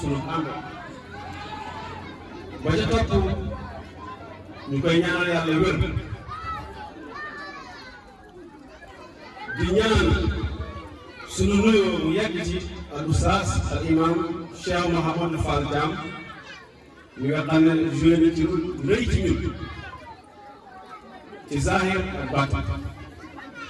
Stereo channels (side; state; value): both; identical; correlation 1.00